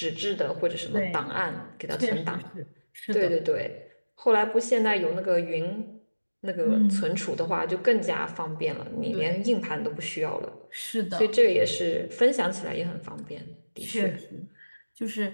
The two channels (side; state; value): both; inverted; correlation -1.00